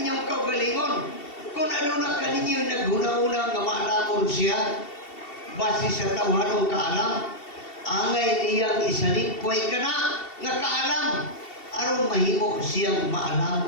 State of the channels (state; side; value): late; right; 2.7 ms